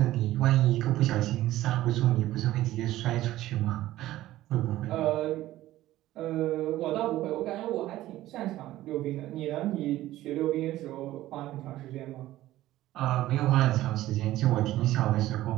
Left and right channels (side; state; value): left; quieter; 15.2 dB